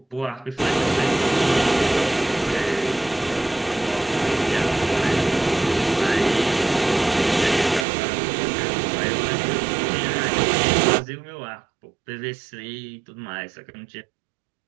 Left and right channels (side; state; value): left; drops out; at 7.9 s